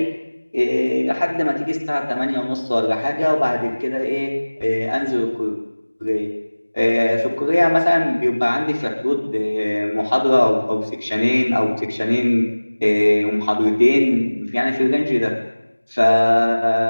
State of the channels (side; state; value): both; inverted; correlation -1.00